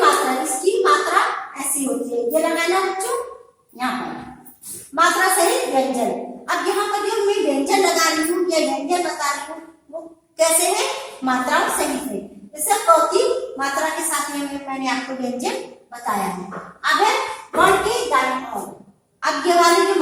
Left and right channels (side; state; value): both; identical; correlation 1.00